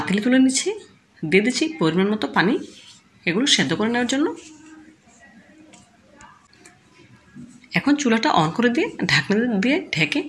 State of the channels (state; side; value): identical; both; correlation 1.00